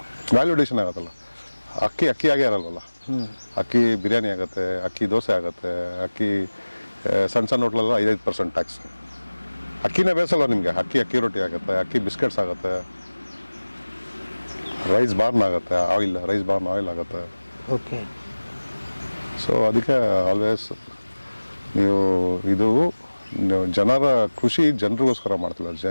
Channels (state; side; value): inverted; both; correlation -1.00